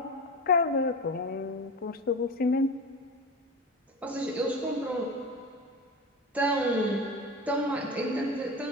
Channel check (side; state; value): both; normal; correlation 0.28